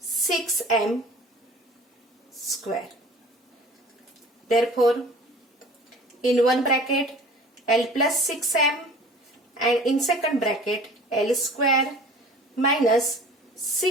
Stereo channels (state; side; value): normal; both; correlation 0.45